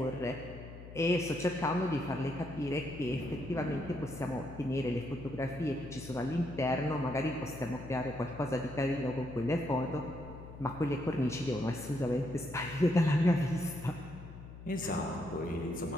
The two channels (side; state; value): left; noise; hum, 14 dB below the sound